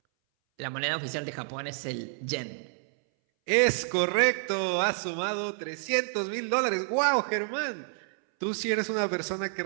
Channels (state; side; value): silent; left; 59 dB below the other